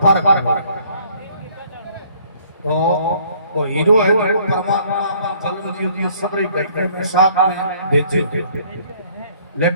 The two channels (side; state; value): both; inverted; correlation -0.60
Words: पार तो वो हीरो है जो परमात्मा अपन कलम जी सबरे घटने में साथ में भेजे